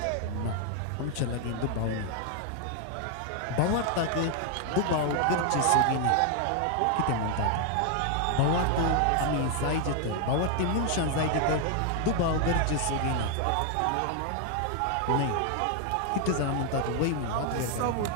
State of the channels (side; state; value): both; different; correlation 0.00